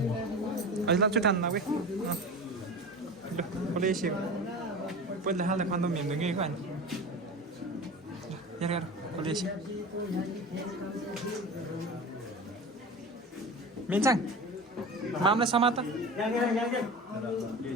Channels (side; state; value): both; normal; correlation 0.32